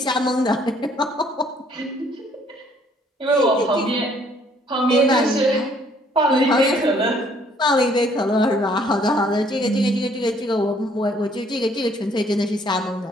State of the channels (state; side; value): normal; both; correlation 0.63